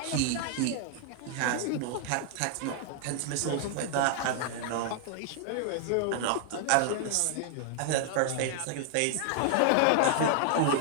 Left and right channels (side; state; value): both; different; correlation 0.00